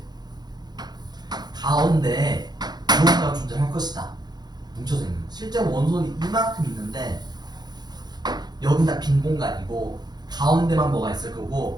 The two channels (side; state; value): left; late; 0.20 ms